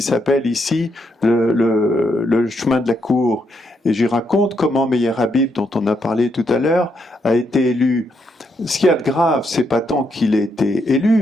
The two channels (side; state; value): both; normal; correlation 0.78